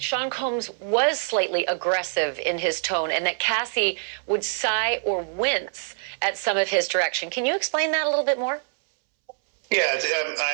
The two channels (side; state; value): left; silent; 62 dB below the other